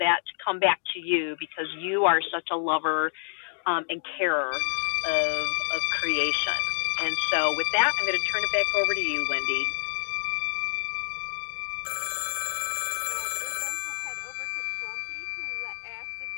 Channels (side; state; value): right; silent; digital silence